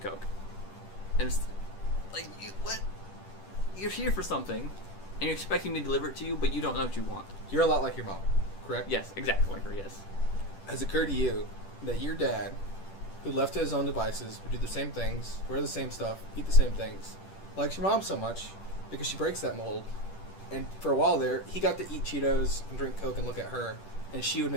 And it's like, what? You're here for something, and you're expecting me to deliver it to you, but you don't know what you want. You're a lot like your mom, correct? Yes, exactly like her, yes. Has it occurred to you that your dad, who left to his own devices, would do the same things, wear the same stuff, eat the same things, likes your mom so much because she breaks that mold? And for a while there, he got to eat Cheetos and drink Coke and look at her, and she would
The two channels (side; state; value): right; late; 10 ms